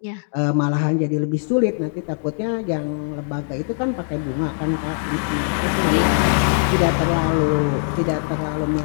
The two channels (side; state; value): right; silent; 65 dB below the other